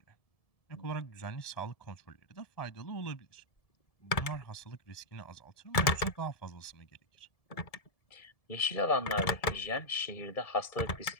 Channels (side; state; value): right; late; 1.7 ms